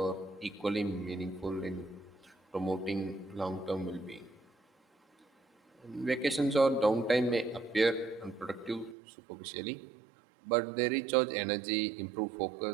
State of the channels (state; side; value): drops out; left; at 9.0 s